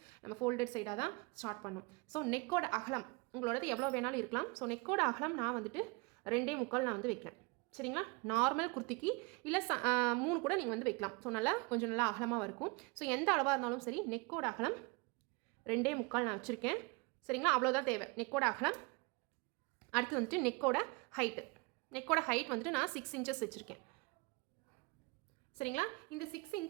நம்ம ஃபோல்டட் சைடாக தான் ஸ்டார்ட் பண்ணணும். ஸோ நெக்கோட அகலம் உங்களோடது எவ்வளோ வேணாலும் இருக்கலாம். ஸோ நெக்கோட அகலம் நான் வந்துட்டு 2.25 நான் வந்து வைக்கிறேன். சரிங்களா. நார்மல் குர்த்திக்கு இல்லை 3 கூட நீங்கள் வந்து வைக்கலாம். ஸோ நல்லா கொஞ்சம் நல்லா அகலமாக இருக்கும். ஸோ எந்த அளவாக இருந்தாலும் சரி நெக்கோட அகலம் 2.25 நான் வச்சுருக்கேன். சரிங்களா. அவ்வளோதான் தேவை நெக்கோட அகலம். அடுத்து வந்துட்டு நெக்கோட ஹைட் வந்துட்டு நான் 6 இன்ச்சஸ் வச்சுருக்கேன். சரிங்களா. இந்த 6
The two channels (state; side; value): quieter; left; 28.6 dB